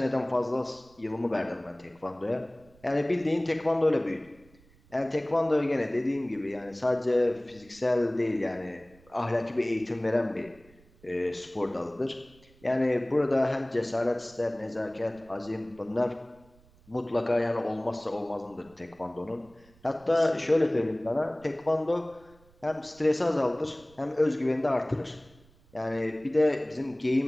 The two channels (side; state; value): right; noise; rumble, 28 dB below the sound